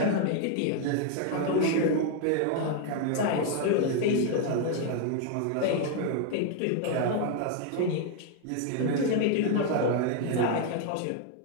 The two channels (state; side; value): different; both; correlation 0.00